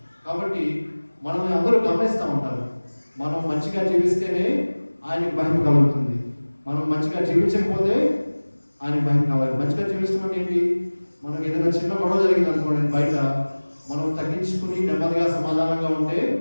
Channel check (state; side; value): inverted; both; correlation -1.00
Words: కాబట్టి మనల్ని అందరూ గమనిస్తూ ఉంటారు. మనం మంచిగా జీవిస్తేనే ఆయనకి మహిమ కలుగుతుంది. మనం మంచిగా జీవించకపోతే ఆయనకి మహిమ కావాలి. మంచిగా జీవించడం అంటే ఏంటి? మనకి ఏదైనా చిన్న గొడవ జరిగింది అనుకోండి బయట, మనం తగ్గించుకుని నెమ్మదిగా సమాధానంగా ఉంటే